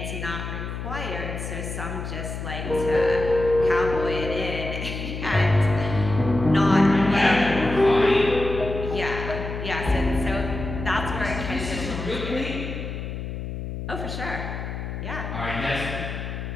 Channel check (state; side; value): noise; left; hum, 6 dB below the sound